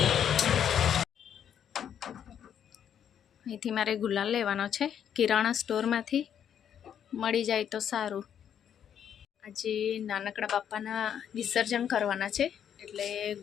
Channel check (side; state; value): right; quieter; 9.0 dB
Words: અહીંથી મારે ગુલાલ લેવાનો છે કિરાણા સ્ટોરમાંથી, મળી જાય તો સારું। આજે નાનકડા બાપાના વિસર્જન કરવાના છે એટલે